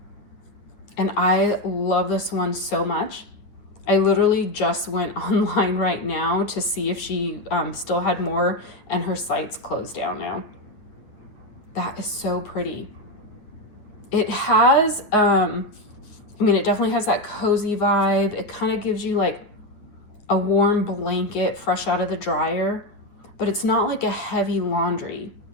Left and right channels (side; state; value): right; late; 9.3 ms